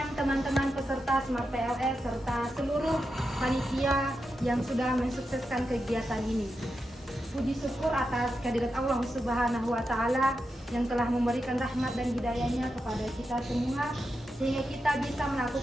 teman-teman peserta Smart PLS serta seluruh panitia yang sudah mensukseskan kegiatan ini. Puji syukur atas kehadirat Allah Subhanahu wa Ta'ala yang telah memberikan rahmat dan hidayahnya kepada kita semua, sehingga kita bisa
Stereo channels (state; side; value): normal; both; correlation 0.88